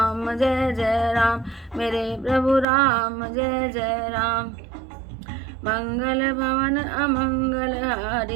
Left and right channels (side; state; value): left; drops out; at 2.7 s